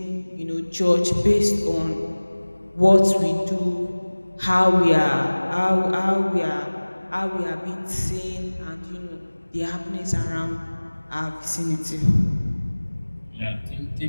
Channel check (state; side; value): inverted; both; correlation -1.00